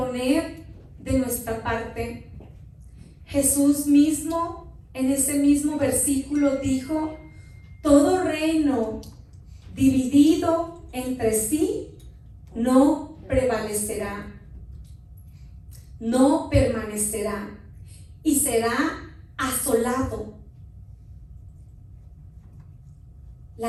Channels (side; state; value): both; identical; correlation 1.00